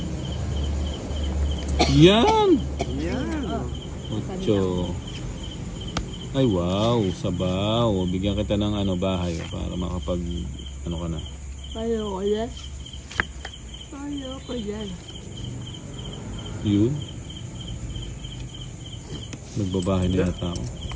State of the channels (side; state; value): both; identical; correlation 1.00